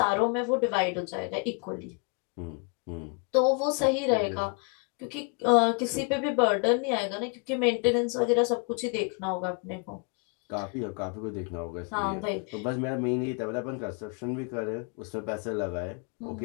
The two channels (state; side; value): quieter; right; 36.4 dB